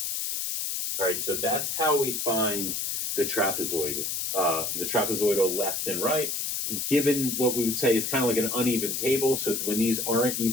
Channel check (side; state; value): left; noise; hiss, 2 dB below the sound